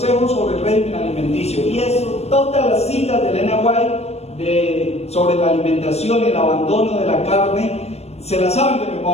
sobre el régimen alimenticio, y eso, todas las citas de Elena White sobre la alimentación y el abandono de la carne se las saben de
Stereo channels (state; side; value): late; right; 0.31 ms